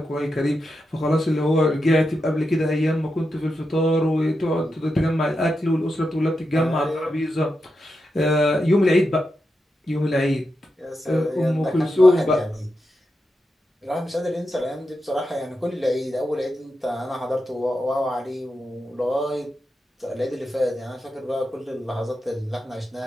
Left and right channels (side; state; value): both; normal; correlation 0.87